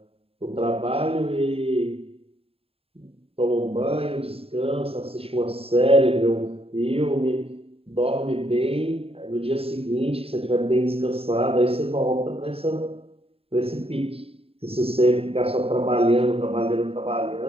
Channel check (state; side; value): late; left; 0.28 ms